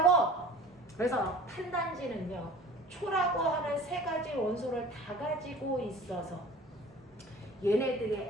그래서 탄단지는요. 초라고 하는 3가지 원소를 다 가지고 있어서 얘네들이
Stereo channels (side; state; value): both; normal; correlation 0.44